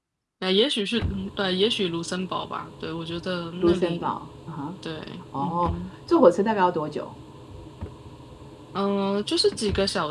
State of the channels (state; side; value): identical; both; correlation 1.00